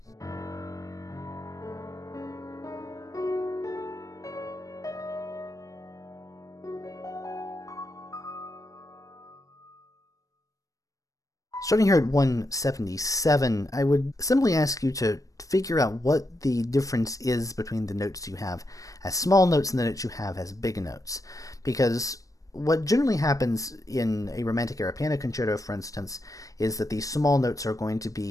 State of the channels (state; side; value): late; right; 0.16 ms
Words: Starting here at 177, I would simply ask you to figure out what the difference is between the notes you have as small notes and the notes you have as big notes. Because what generally happens in a Romantic era piano concerto, for instance, is that these small notes are going to